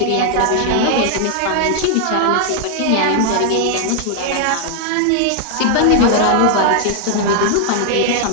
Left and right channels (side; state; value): both; different; correlation 0.00